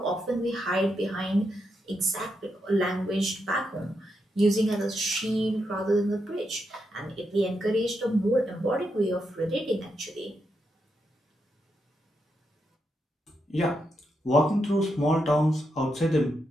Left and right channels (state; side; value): normal; both; correlation 0.83